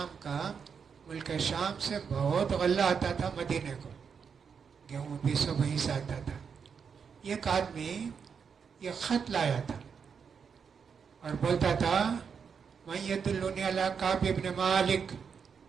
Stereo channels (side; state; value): left; quieter; 6.4 dB